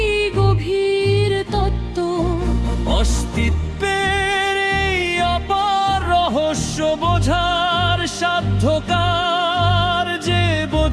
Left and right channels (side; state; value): both; identical; correlation 1.00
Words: গভীর তত্ত্ব। অস্তিত্বের এই অপার রহস্য বোঝার সাধ্যকার, যে